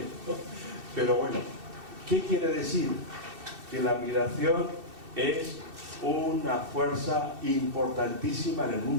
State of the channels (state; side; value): late; left; 2.7 ms